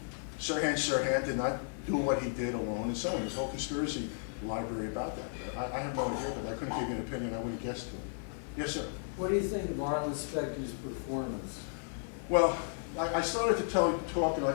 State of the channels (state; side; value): silent; right; 55 dB below the other